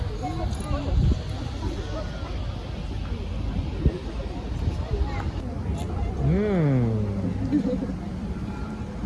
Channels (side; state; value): both; identical; correlation 1.00